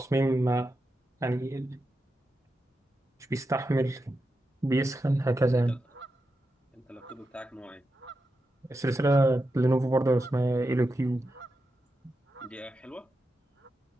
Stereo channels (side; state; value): both; normal; correlation 0.88